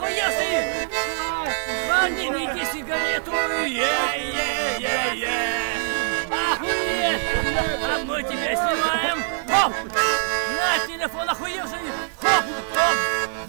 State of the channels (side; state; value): left; silent; digital silence